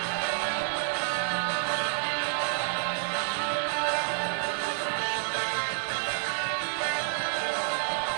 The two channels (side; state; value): left; silent; digital silence